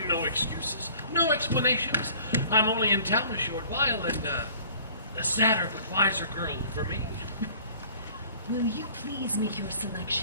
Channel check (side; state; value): both; inverted; correlation -0.50